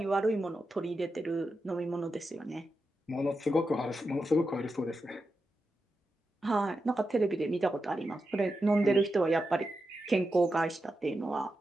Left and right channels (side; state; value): both; normal; correlation 0.89